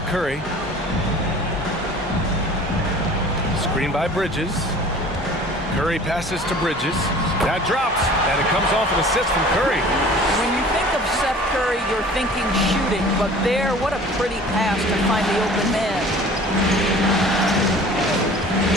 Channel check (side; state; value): both; normal; correlation 0.46